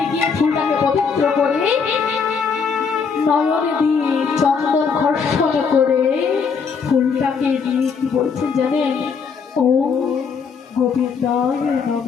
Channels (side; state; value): right; quieter; 5.8 dB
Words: গিয়ে ফুলটাকে পবিত্র করে নয়নে দিয়ে চন্দন ঘর্ষণ করে ফুলটাকে দিয়ে কি বলছেন জানেন? ওম গোবিন্দায়